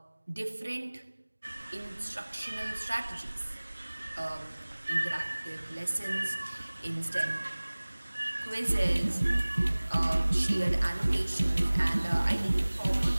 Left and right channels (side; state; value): both; inverted; correlation -1.00